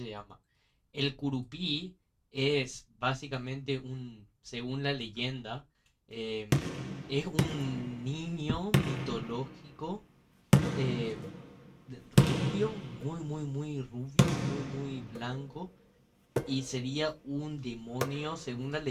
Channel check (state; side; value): identical; both; correlation 1.00